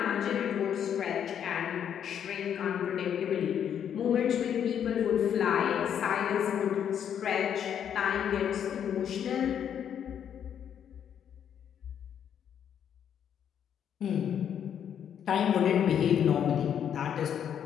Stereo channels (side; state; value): right; quieter; 8.9 dB